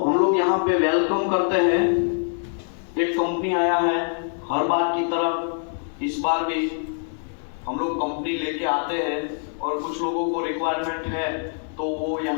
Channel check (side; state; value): right; silent; digital silence